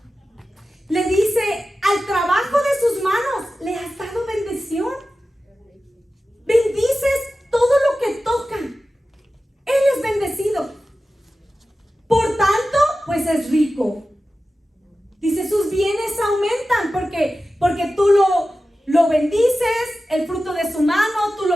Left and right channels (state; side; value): normal; both; correlation 0.94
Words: Le dice: al trabajo de sus manos le has dado bendición. Bendices todo lo que toca. Él es bendecido. Por tanto, pues es rico. Dice: sus bienes aumentan porque tú lo bendices, el fruto de su mano, tú